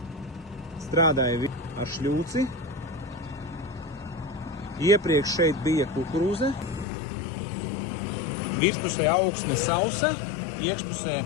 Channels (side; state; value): right; drops out; at 6.9 s